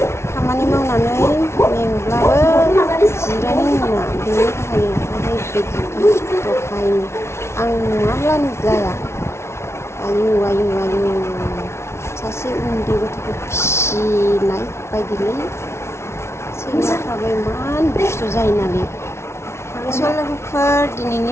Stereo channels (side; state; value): right; late; 0.13 ms